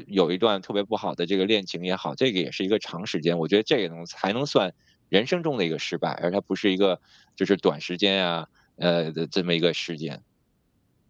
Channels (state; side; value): identical; both; correlation 1.00